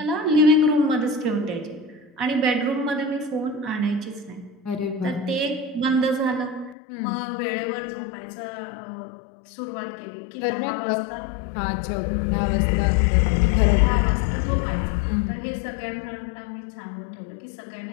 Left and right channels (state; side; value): drops out; right; at 6.8 s